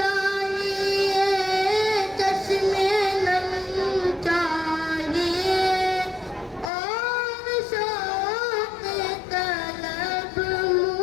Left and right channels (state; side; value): drops out; right; at 6.7 s